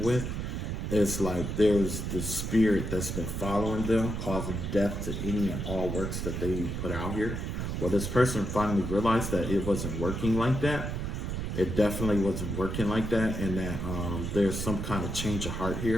with, it's like there's this spirit that's been following them, causing death to any and all works that they put out here. Well, this person finally realized that it wasn't working like that. It definitely wasn't working like that, and that there's some kind of change of heart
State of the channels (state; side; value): noise; right; rumble, 3 dB below the sound